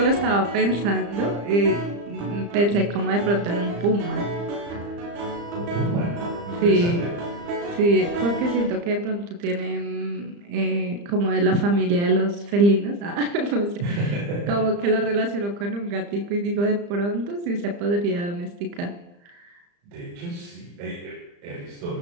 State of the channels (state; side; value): late; left; 35 ms